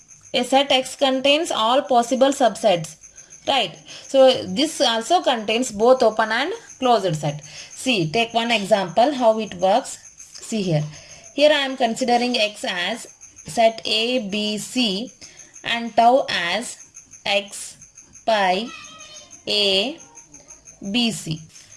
set X contains all possible subsets. Right. So this also contains both open and closed set. See, take one example how it works. See here. Here I am considering X as set A, B, C and tau as X, pi, A, B, C.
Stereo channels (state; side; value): identical; both; correlation 1.00